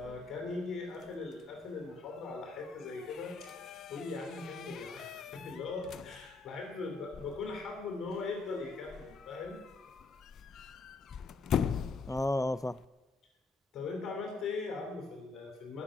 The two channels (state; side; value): quieter; right; 4.0 dB